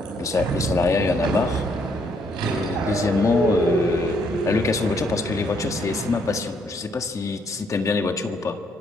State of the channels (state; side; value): normal; both; correlation 0.70